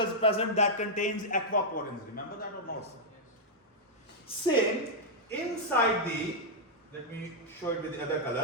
present that contains aquaporins. Remember that or not? Same, inside the, let me show it with the other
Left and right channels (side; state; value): both; normal; correlation -0.06